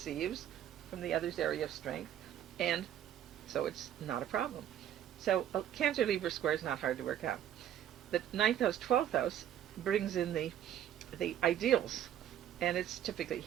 from the other's area of strength, and so it's not a problem. So a Cancer-Libra square is not hard to work out. The 9th house, 12th house brings in the ideals. And it's typically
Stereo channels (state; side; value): quieter; left; 10.8 dB